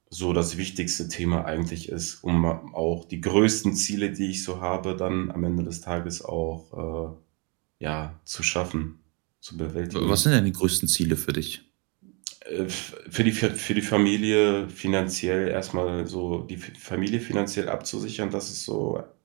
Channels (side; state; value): left; quieter; 32.4 dB